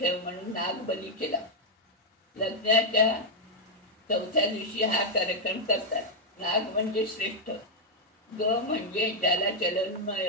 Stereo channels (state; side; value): normal; both; correlation -0.01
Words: म्हणून नागबली केला. लग्नाच्या 4थ्या दिवशी हा कार्यक्रम करतात. नाग म्हणजे श्रेष्ठ, ग म्हणजे ज्याला